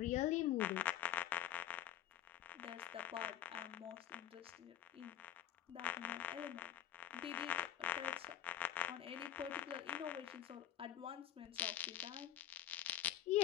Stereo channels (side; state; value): right; quieter; 11.5 dB